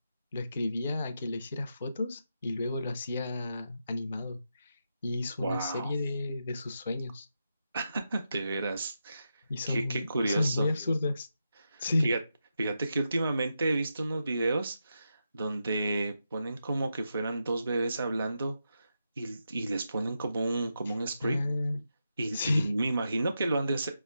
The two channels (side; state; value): both; inverted; correlation -0.86